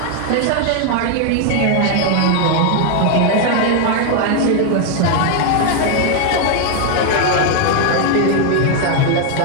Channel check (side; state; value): both; different; correlation 0.00